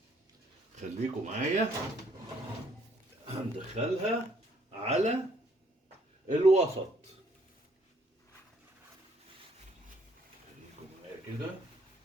خليكم معايا، هندخلها على الوسط. خليكم معايا كده،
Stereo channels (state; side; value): normal; both; correlation 0.65